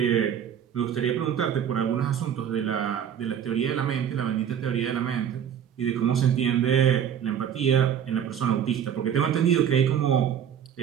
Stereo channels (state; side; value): quieter; left; 8.9 dB